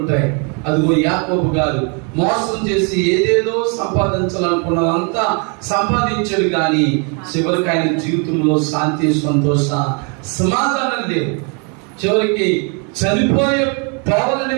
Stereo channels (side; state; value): left; quieter; 35.5 dB